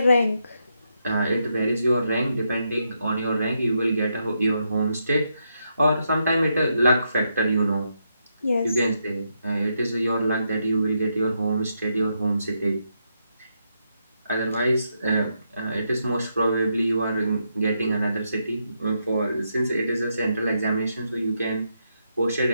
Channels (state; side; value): inverted; both; correlation -0.81